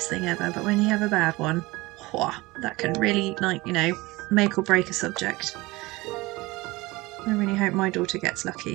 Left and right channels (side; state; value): left; quieter; 21.4 dB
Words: thing ever, but when you have a bad one, that can really make or break a subject. I really hope my daughter gets